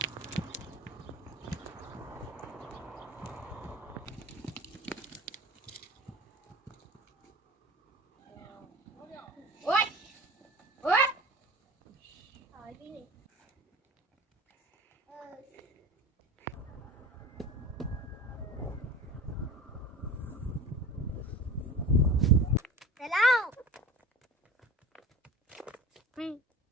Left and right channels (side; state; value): both; normal; correlation 0.38